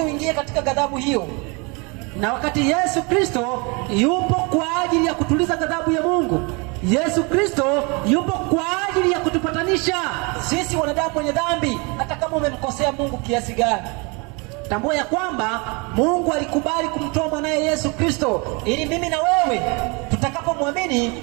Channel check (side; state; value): left; quieter; 30.1 dB